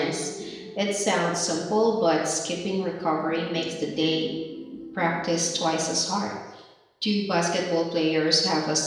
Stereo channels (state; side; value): identical; both; correlation 1.00